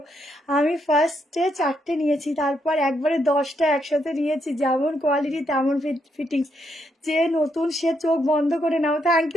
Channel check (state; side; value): normal; both; correlation 0.77